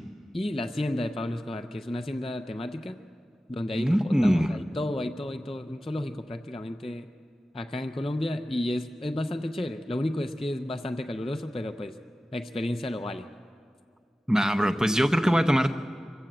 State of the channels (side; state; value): both; normal; correlation 0.95